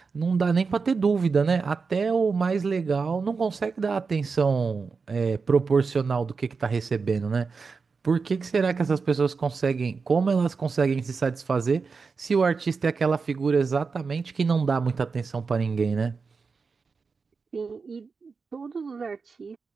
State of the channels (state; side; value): quieter; left; 4.9 dB